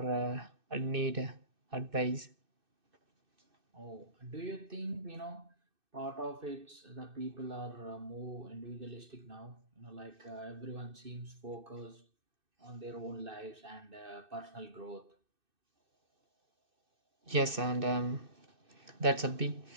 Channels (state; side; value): late; left; 2.6 ms